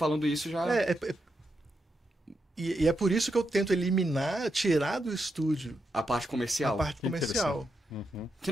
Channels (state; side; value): normal; both; correlation 0.84